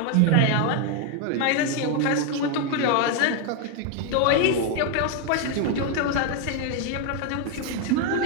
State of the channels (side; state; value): both; different; correlation 0.01